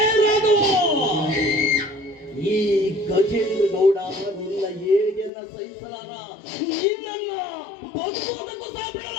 ರಾಘವ, ಈ ಗಜೇಂದ್ರ ಗೌಡ ನಿನ್ನ ಏಳಿಗೆಯನ್ನ ಸಹಿಸಲಾರ, ನಿನ್ನನ್ನ ಬದುಕುವುದಕ್ಕೂ ಸಹ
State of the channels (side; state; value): right; drops out; at 5.3 s